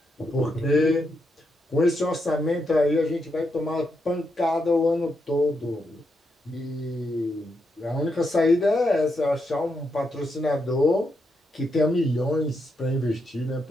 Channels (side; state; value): both; normal; correlation 0.82